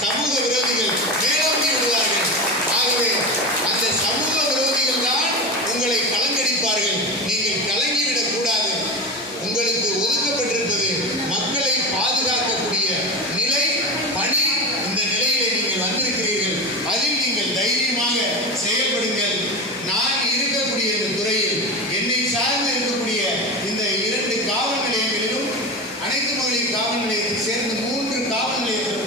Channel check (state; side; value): normal; both; correlation 0.23